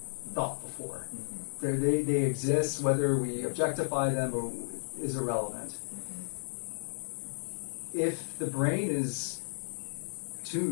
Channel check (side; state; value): right; silent; digital silence